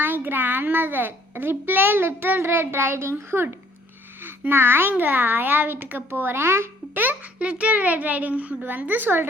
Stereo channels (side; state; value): both; normal; correlation 0.60